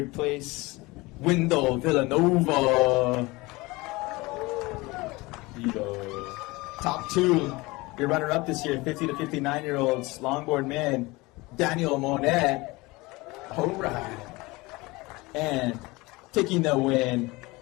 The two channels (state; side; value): quieter; right; 22.7 dB